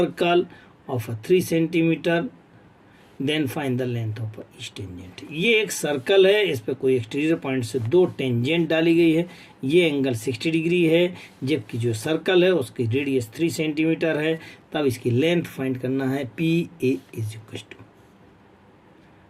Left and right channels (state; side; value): identical; both; correlation 1.00